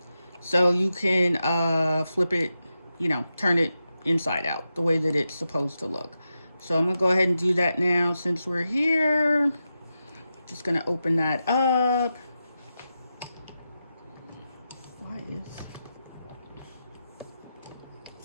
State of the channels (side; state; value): both; inverted; correlation -0.89